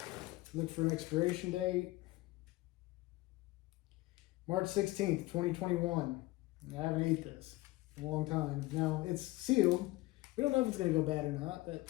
look for an expiration date. March 16th, 2021. I haven't ate this in a long time. Now, it's sealed. We don't know if it's going to go bad or not,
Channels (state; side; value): quieter; right; 19.7 dB